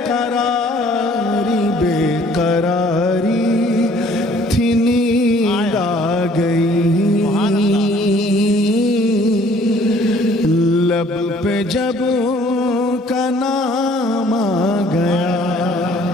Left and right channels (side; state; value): both; normal; correlation 0.57